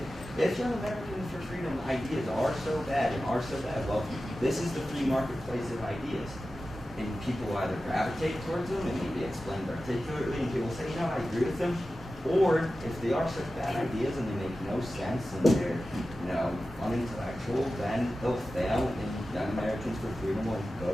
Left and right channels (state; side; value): normal; both; correlation 0.94